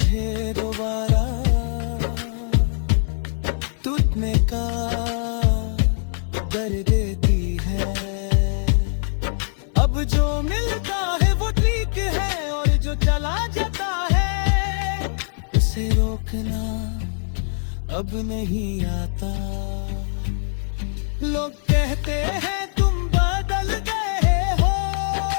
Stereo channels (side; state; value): right; silent; digital silence